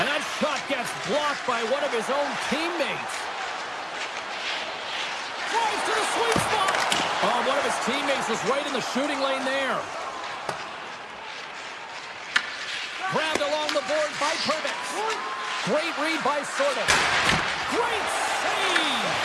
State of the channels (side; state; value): both; identical; correlation 1.00